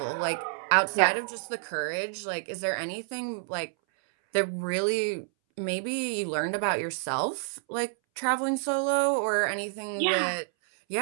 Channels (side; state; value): left; silent; 59 dB below the other